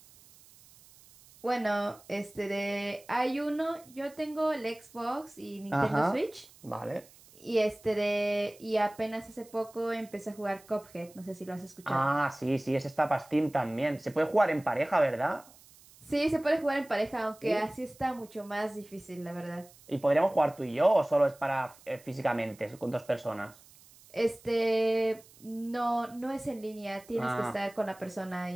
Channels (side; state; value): right; noise; hiss, 24 dB below the sound